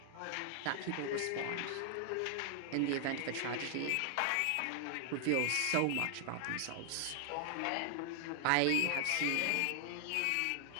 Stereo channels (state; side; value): different; both; correlation 0.00